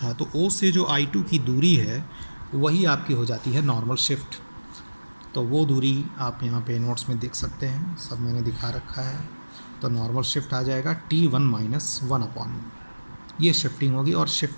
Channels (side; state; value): both; inverted; correlation -1.00